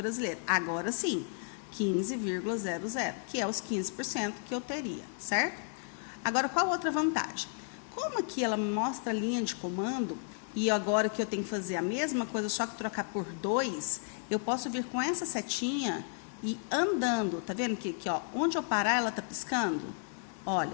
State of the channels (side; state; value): right; silent; 56 dB below the other